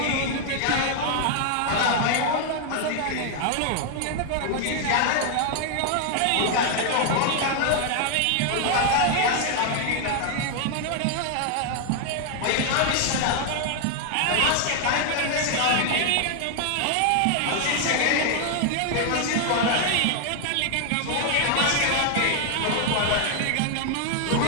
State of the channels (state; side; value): different; both; correlation 0.00